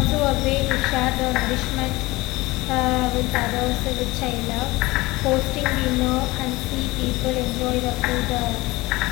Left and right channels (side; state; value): right; quieter; 20.9 dB